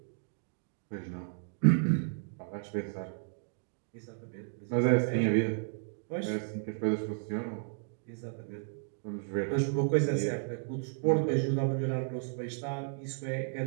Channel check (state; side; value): silent; left; digital silence